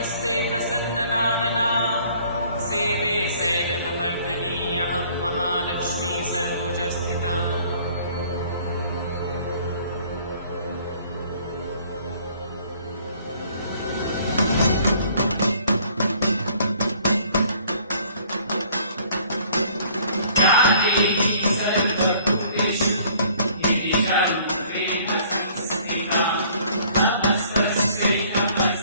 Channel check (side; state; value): both; inverted; correlation -0.57